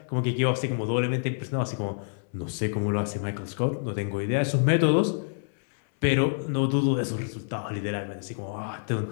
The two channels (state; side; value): silent; right; 60 dB below the other